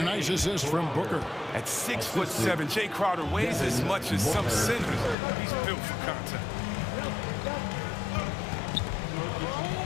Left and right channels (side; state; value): right; drops out; at 5.2 s